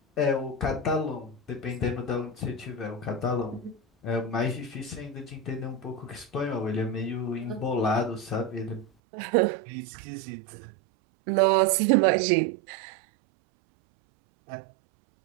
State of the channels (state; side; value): drops out; left; at 8.8 s